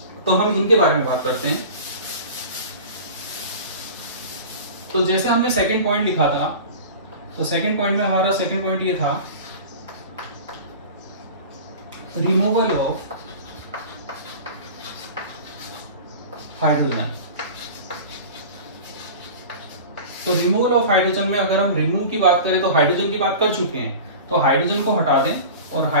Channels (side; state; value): both; inverted; correlation -0.36